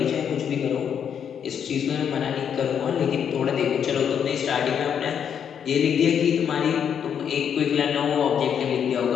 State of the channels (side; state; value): right; quieter; 8.1 dB